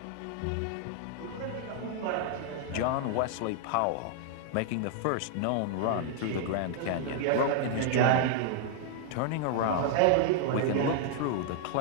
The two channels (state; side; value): different; both; correlation 0.00